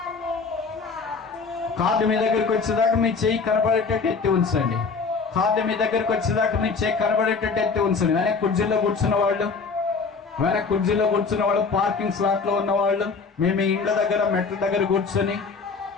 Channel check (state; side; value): quieter; right; 4.9 dB